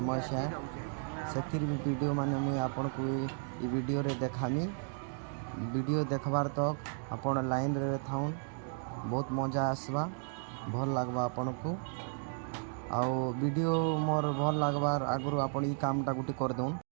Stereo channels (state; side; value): silent; left; 55 dB below the other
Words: है, से वीडियो माने मुई आपन को वीडियो रे देखामी। वीडियो देखबार तक आपण लाइन रे थाउन, बहुत मजा आसवा, भल लगवा आपन को। आउ वीडियो मोर भल लगवार आगु आपण ई कामटा गुटी कर दउन।